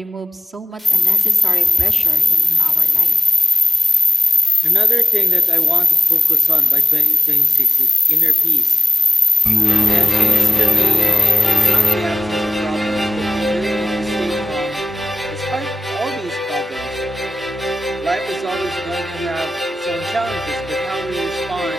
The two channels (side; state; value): both; normal; correlation 0.94